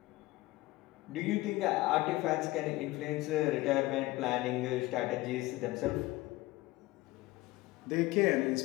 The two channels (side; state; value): right; quieter; 19.4 dB